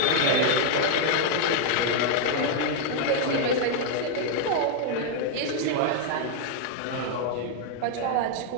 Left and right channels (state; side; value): different; both; correlation 0.00